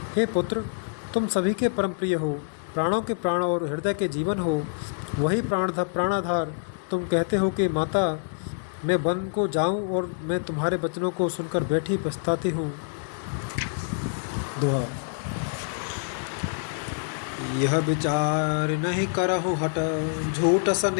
हे पुत्र, तुम सभी के परम प्रिय हो, प्राणों के प्राण और हृदय के जीवन हो। वही प्राणाधार तुम कहते हो कि माता मैं वन को जाऊं और मैं तुम्हारे वचनों को सुनकर बैठी पछताती हूँ। दुआ। यह विचार नहीं करहु हट, झूठ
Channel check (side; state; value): right; silent; digital silence